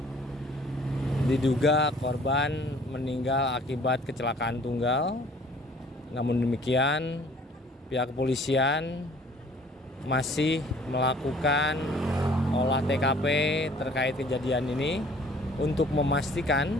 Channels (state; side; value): normal; both; correlation 0.54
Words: diduga korban meninggal akibat kecelakaan tunggal. Namun demikian, pihak kepolisian masih melakukan olah TKP terkait kejadian ini untuk memastikan